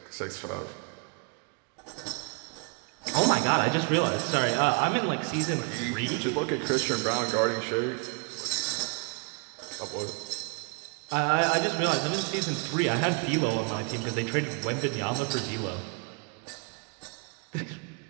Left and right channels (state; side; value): quieter; left; 37.2 dB